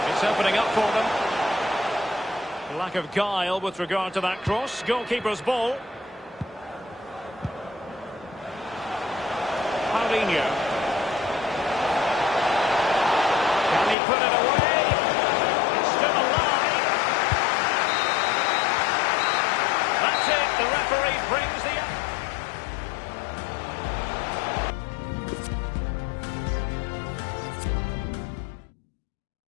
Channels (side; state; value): right; drops out; at 14.0 s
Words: It's opening up for them. Lack of guile with regard to that cross. Goalkeeper's ball. Paulinho. Can he put it away? It's still alive. That's it. The referee brings the...